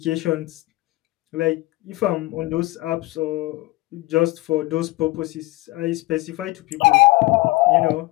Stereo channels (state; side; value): quieter; right; 20.3 dB